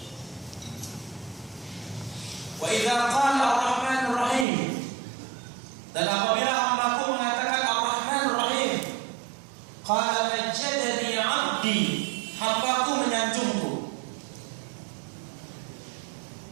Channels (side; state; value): left; drops out; at 4.5 s